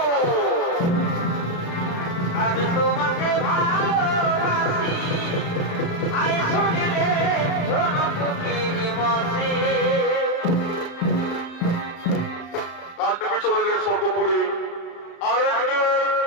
আমি তোমাকে ভালোবাসি আয় শুনে রে পাণ্ডবী চলে গেলে স্বর্গপুরে। আর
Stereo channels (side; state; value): right; late; 35 ms